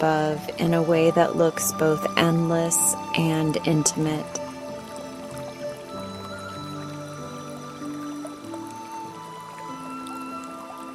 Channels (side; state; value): both; identical; correlation 1.00